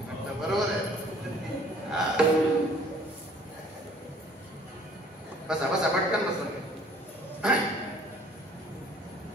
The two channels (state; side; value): normal; both; correlation 0.55